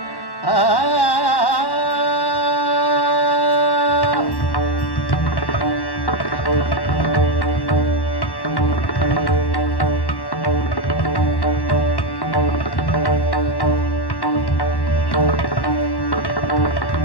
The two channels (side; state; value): right; late; 1.1 ms